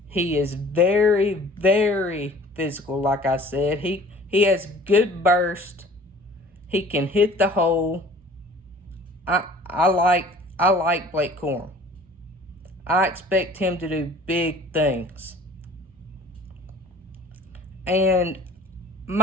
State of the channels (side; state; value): both; normal; correlation 0.47